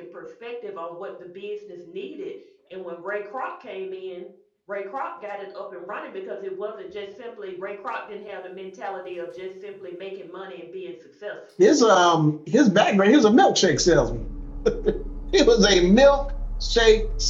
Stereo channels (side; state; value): both; identical; correlation 1.00